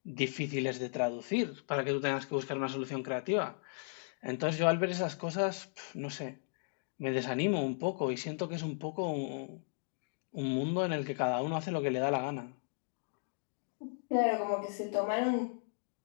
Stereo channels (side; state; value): right; silent; digital silence